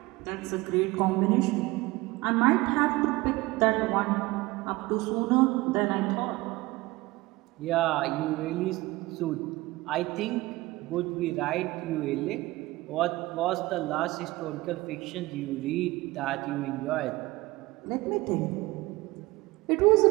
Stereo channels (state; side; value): quieter; left; 20.4 dB